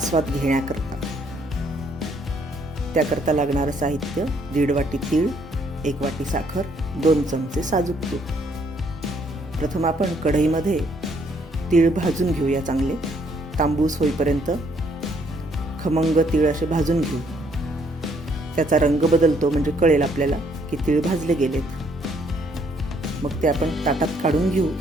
घेण्याकरता. त्याकरता लागणारं साहित्य 1.5 वाटी तीळ, 1 वाटी साखर, 2 चमचे साजूक तूप. प्रथम आपण कढईमध्ये तीळ भाजून घेऊया. चांगले तांबूस होईपर्यंत खमंग तीळ असे भाजून घेऊ. त्याचा रंग बदलतो म्हणजे कळेल आपल्याला की तीळ भाजले गेलेत. मग ते आपण ताटात काढून घेऊ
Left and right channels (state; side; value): normal; both; correlation 0.68